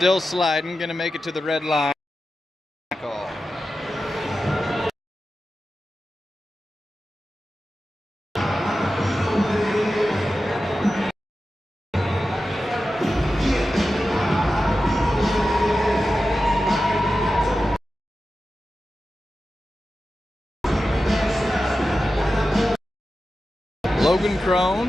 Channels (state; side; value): normal; both; correlation 0.92